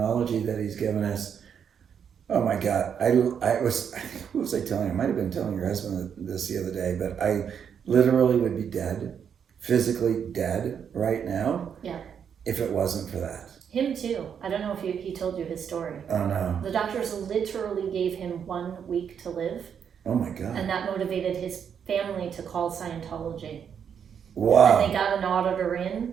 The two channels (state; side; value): quieter; left; 7.7 dB